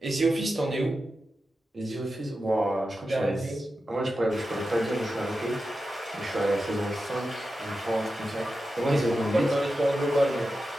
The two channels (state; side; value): normal; both; correlation 0.91